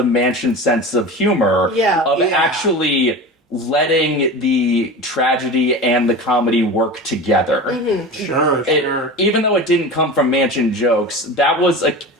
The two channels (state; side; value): normal; both; correlation 0.31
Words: Mansion sense of humor. Actually letting the tragedy and the comedy work together. Mm-hmm. Sure. Even though it didn't come from Mansion jokes, that was